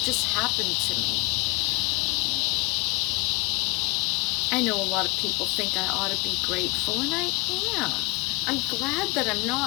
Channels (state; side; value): quieter; right; 22.5 dB